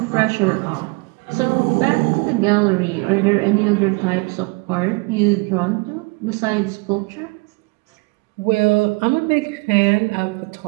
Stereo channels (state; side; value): quieter; left; 27.8 dB